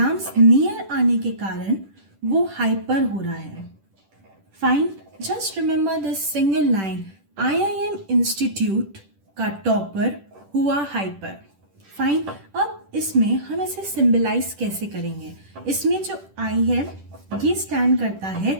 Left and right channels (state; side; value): late; left; 10 ms